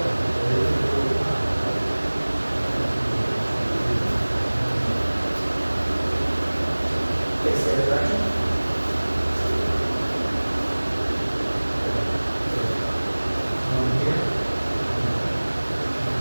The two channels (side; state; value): both; inverted; correlation -1.00